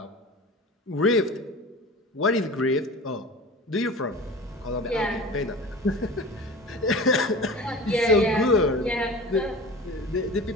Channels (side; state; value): both; normal; correlation 0.37